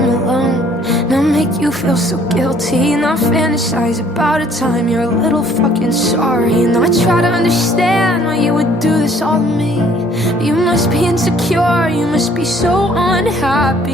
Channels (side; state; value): both; normal; correlation 0.59